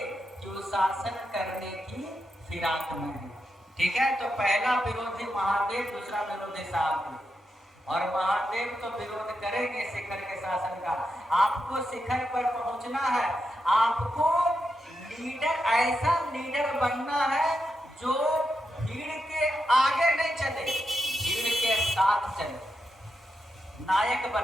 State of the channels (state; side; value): normal; both; correlation 0.86